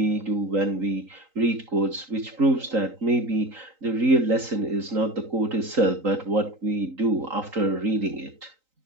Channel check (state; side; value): late; left; 3.9 ms